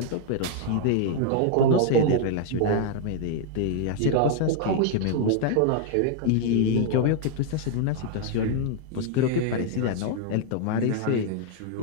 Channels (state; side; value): different; both; correlation 0.00